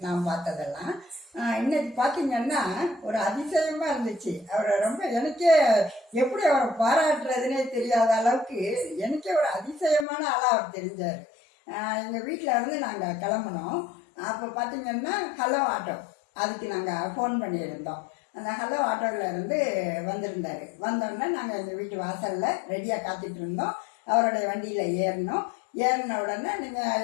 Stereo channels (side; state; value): right; drops out; at 10.1 s